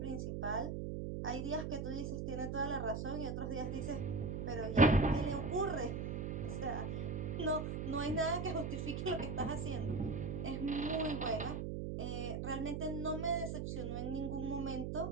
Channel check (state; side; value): noise; right; hum, 3 dB below the sound